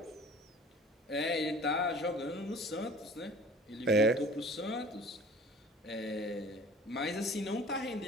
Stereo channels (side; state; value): both; normal; correlation 0.46